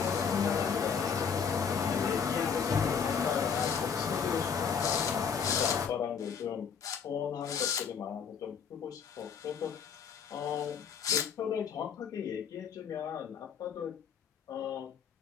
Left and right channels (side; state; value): right; quieter; 6.7 dB